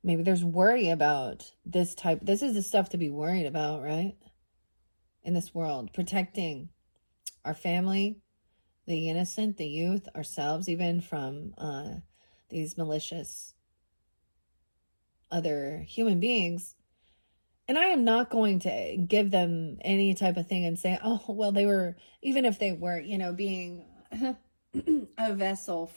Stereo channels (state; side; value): inverted; both; correlation -1.00